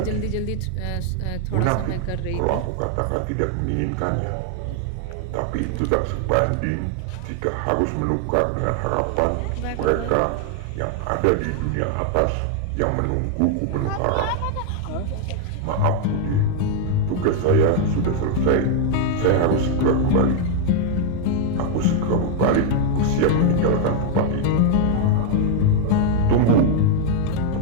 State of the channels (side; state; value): both; different; correlation 0.00